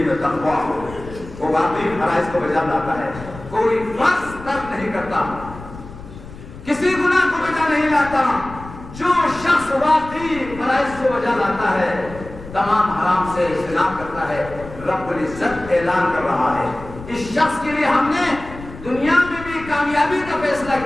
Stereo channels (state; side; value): noise; left; rumble, 15 dB below the sound